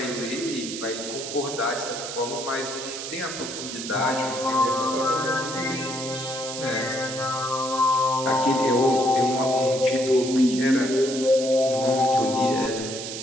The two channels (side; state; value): right; noise; hiss, 7 dB below the sound